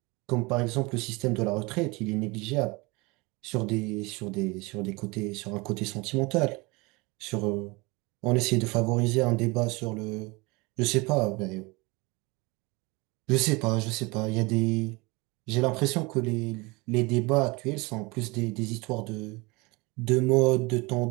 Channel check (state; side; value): quieter; left; 25.6 dB